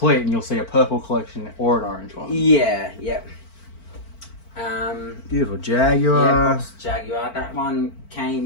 and you'll see a purple collection or an orange one. Yeah, yeah. Beautiful Jaguar. Yeah, box Jaguar. That one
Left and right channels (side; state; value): right; late; 4.5 ms